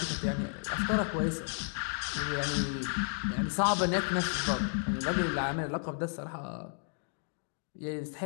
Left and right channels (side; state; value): right; silent; 56 dB below the other